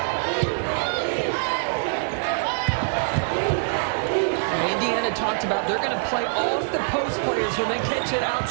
Indiana talked about they're going to play off the post players when they catch it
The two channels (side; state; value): left; silent; 58 dB below the other